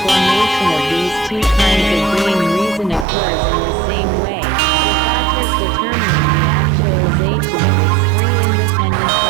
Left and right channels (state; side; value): drops out; left; at 3.1 s